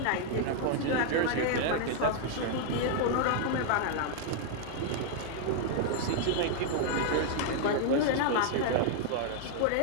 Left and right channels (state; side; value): different; both; correlation -0.01